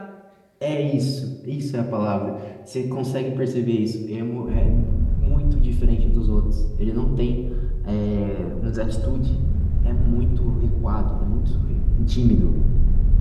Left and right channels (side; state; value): both; identical; correlation 1.00